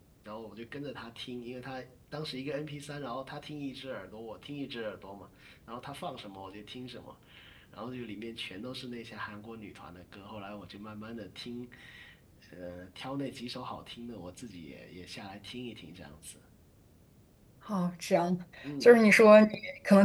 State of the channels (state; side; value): identical; both; correlation 1.00